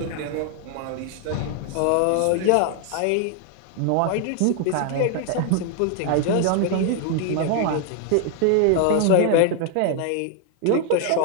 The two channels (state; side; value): different; both; correlation 0.00